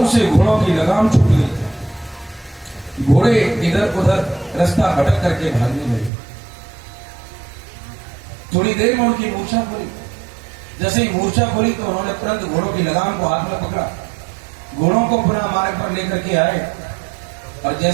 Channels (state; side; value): drops out; left; at 6.1 s